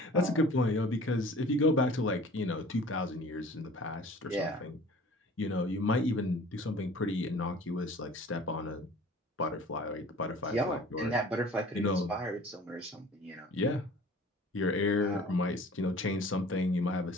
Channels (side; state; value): both; normal; correlation 0.46